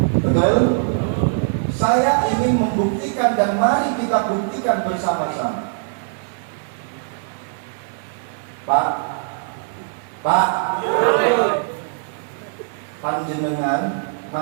Betul? Saya ingin membuktikan dan mari kita buktikan bersama-sama. Pak, panjenengan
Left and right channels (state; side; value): silent; left; 58 dB below the other